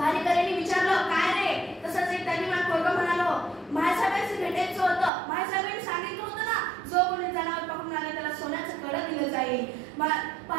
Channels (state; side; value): drops out; left; at 5.1 s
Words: विचारलं, काय रे? तसंच एक धनीमान पोरगं म्हणालो, महासाहेबांशी भेटायचं होतं, महासाहेबांनी सांगितलं होतं ना, जो कोणी जनावर पकडून आले त्याला सोन्याचं कड दिलं जाईल।